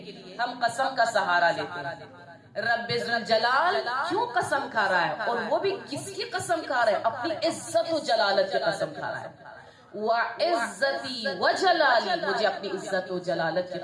ہم قسم کا سہارا لیتے ہیں. رب ذوالجلال کیوں قسم کھا رہا ہے، اور وہ بھی کس کی قسم کھا رہا ہے؟ اپنی عزت و جلالت کی قسم کھا رہا ہے. وعزتی وجلالی، مجھے اپنی عزت و جلالت کی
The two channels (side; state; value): both; identical; correlation 1.00